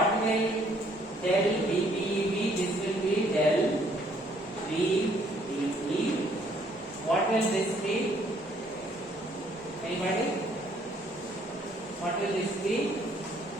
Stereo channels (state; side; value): normal; both; correlation 0.64